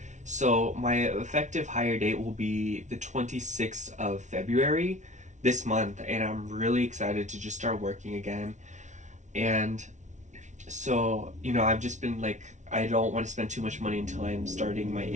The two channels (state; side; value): late; left; 0.35 ms